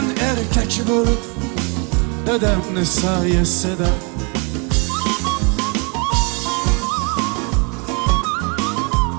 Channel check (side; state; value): left; quieter; 33.3 dB